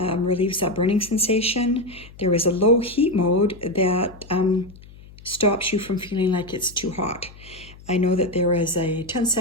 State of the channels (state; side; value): noise; left; hum, 20 dB below the sound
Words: that burning sensation. There is a low heat mode that stops you from feeling like it's too hot. I know that there is a